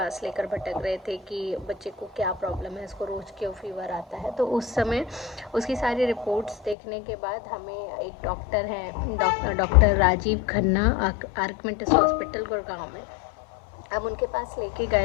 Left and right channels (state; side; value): drops out; right; at 6.8 s